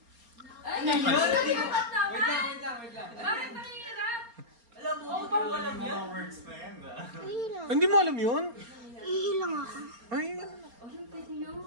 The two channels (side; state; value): left; late; 4.3 ms